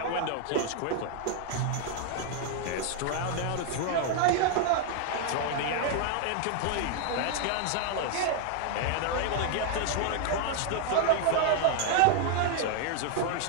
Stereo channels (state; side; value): different; both; correlation 0.00